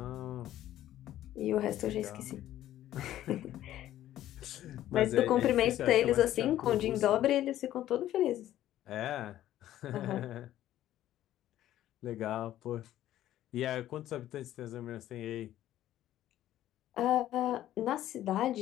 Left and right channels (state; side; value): quieter; right; 13.0 dB